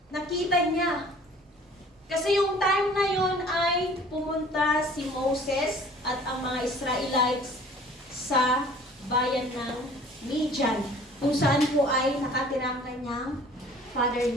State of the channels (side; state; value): both; normal; correlation 0.50